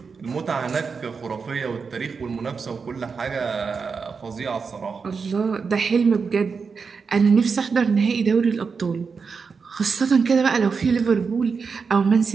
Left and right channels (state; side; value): quieter; left; 5.3 dB